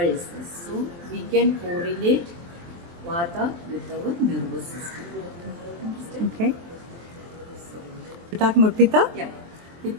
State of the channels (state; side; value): late; left; 23 ms